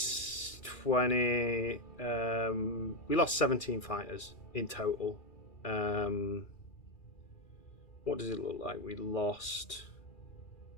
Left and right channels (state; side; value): late; right; 2.4 ms